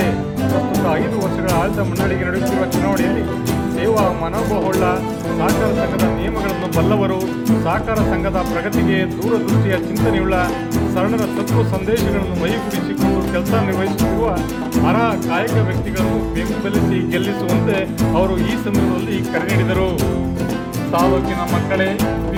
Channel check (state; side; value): identical; both; correlation 1.00